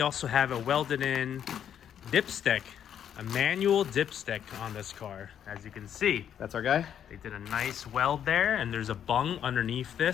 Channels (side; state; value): right; quieter; 9.2 dB